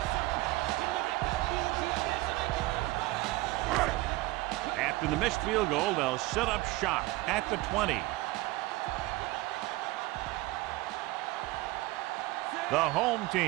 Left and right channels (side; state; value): left; quieter; 20.0 dB